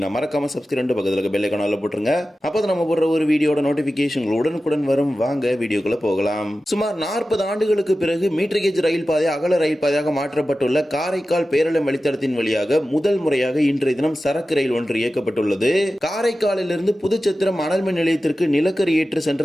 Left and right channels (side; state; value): both; normal; correlation 0.94